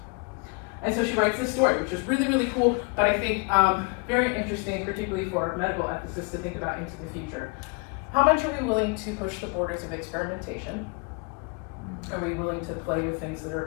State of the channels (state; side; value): quieter; right; 32.0 dB